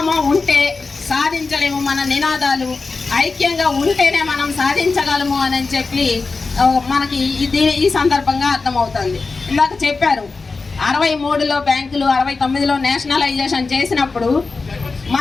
ఉంటే సాధించలేము. మన నినాదాలు ఐక్యంగా ఉంటేనే మనం సాధించగలము అని చెప్పి మనకి ఈ సందర్భంగా అర్థమవుతుంది. ఇందాక చెప్పారు 63లో బ్యాంకులు, 69లో నేషనలైజేషన్ చేసినప్పుడు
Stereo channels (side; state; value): right; quieter; 4.1 dB